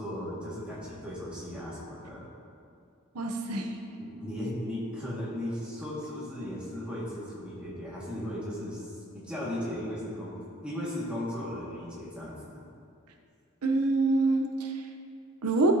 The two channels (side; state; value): both; normal; correlation 0.58